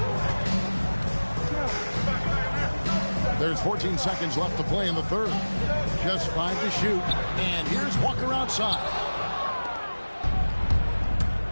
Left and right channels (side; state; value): both; inverted; correlation -1.00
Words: There's 14 seconds left to play in the third. Just 5 to shoot. And here's Walker outside.